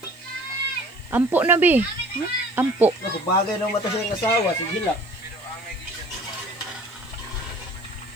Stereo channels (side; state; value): right; noise; hiss, 29 dB below the sound